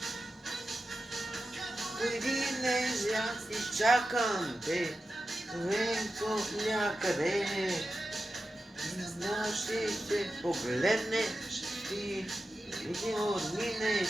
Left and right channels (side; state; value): both; normal; correlation 0.91